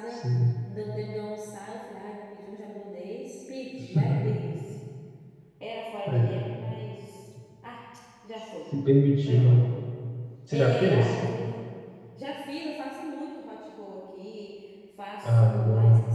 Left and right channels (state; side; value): identical; both; correlation 1.00